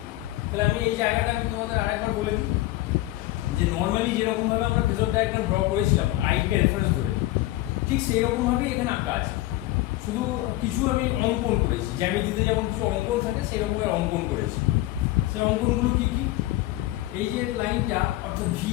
তাহলে আমি এই জায়গাটা আমি তোমাদের আরেকবার বলে দিই যে নর্মালি যেরকম ভাবে আমরা ফেজর ডায়াগ্রাম ড্র করেছিলাম আইকে রেফারেন্স ধরে, ঠিক সেই রকম ভাবে এখানে আঁকা আছে। শুধু কিছু আমি অঙ্কন করেছি, জ্যামিতিতে যেমন কিছু অঙ্কন থাকে সেই রকম অঙ্কন করেছি। সেই অঙ্কনগুলো কি কি, এই যে লাইনটা অর্থাৎ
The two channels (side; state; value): right; quieter; 16.9 dB